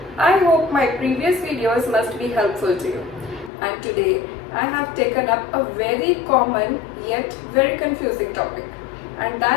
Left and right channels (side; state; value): right; drops out; at 3.5 s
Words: I hope my previous videos must be helpful to you. And today I have taken up a very common yet very confusing topic, and